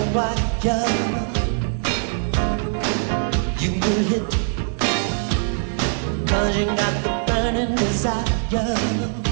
wire. You will hit, 'cause you got the burning desire.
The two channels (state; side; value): silent; left; 59 dB below the other